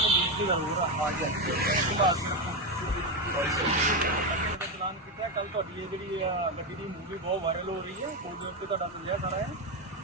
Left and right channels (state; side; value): normal; both; correlation 0.10